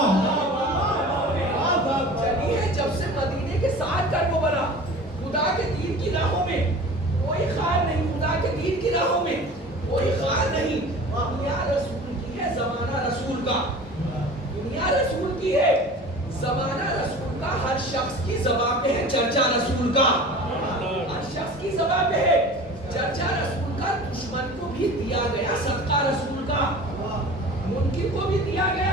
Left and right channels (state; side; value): normal; both; correlation 0.40